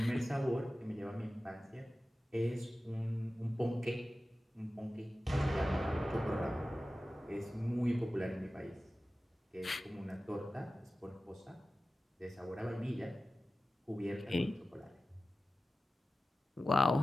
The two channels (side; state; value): both; normal; correlation 0.95